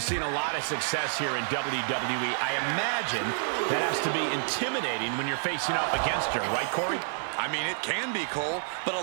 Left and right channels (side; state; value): left; silent; 59 dB below the other